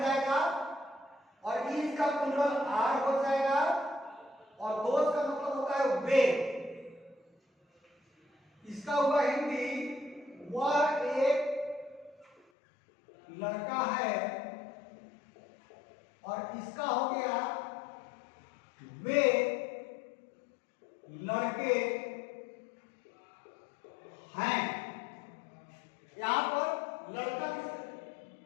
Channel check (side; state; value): right; drops out; at 12.5 s